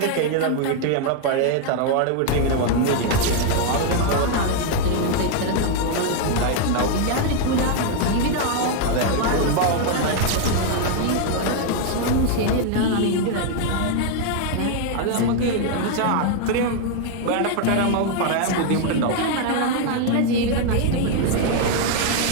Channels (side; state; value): both; different; correlation 0.00